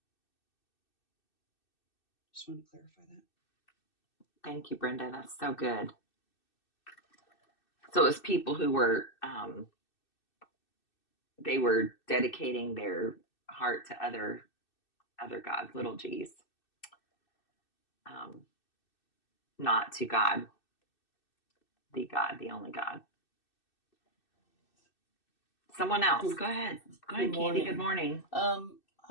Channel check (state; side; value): late; right; 2.6 ms